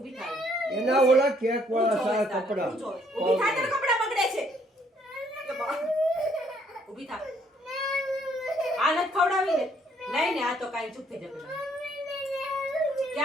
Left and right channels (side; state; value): both; normal; correlation 0.66